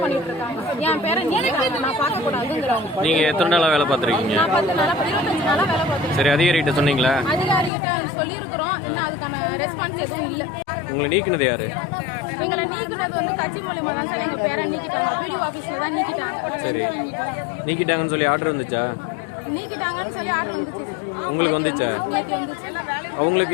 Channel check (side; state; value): right; drops out; at 7.7 s